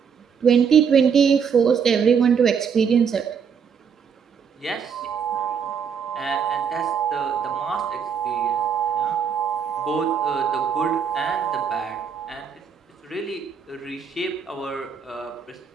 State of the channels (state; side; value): quieter; left; 6.9 dB